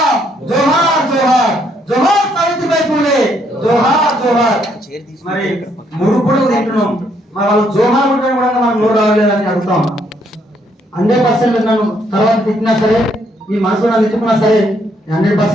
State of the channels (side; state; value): both; normal; correlation 0.71